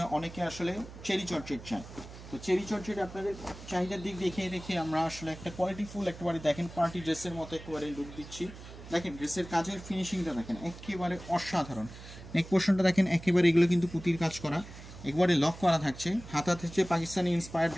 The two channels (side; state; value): right; noise; hum, 15 dB below the sound